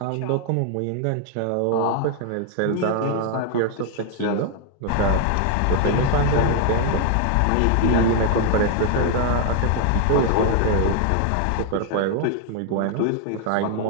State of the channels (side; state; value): both; different; correlation 0.00